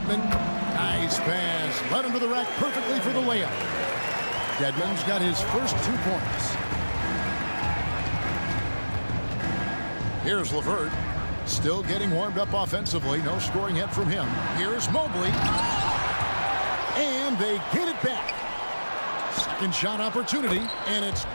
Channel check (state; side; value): inverted; both; correlation -1.00